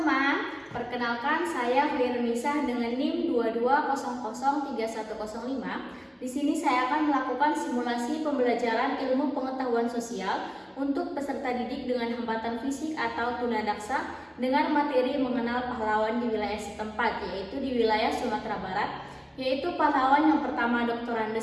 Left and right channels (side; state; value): both; identical; correlation 1.00